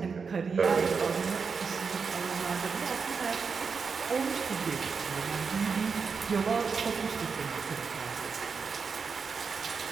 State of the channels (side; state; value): left; quieter; 5.4 dB